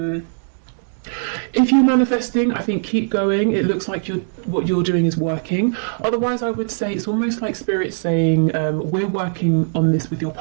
If you're manifesting, I think keep going. It looks like what you're doing is working. Otherwise, I would say it's almost like Spirit saying, we're working on this with your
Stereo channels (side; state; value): left; silent; digital silence